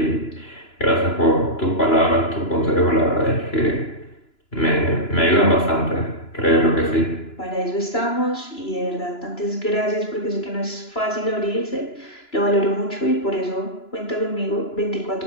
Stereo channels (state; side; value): late; right; 2.9 ms